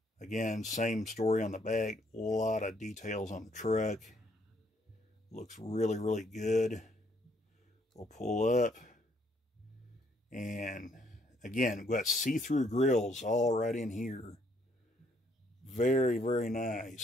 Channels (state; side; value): normal; both; correlation 0.69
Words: Again, same story on the back. A lot of details on the truck. Looks really, really good. We'll pull up. And again, we've got see-through grills all right in here. Very, very